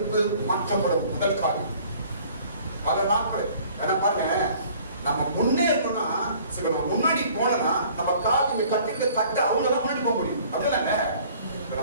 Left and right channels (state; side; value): inverted; both; correlation -0.54